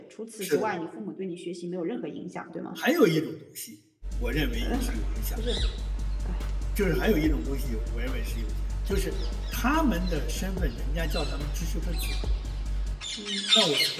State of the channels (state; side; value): identical; both; correlation 1.00